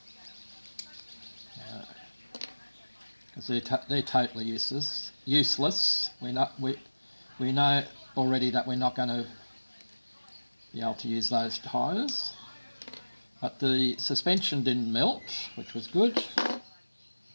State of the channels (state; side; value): inverted; both; correlation -1.00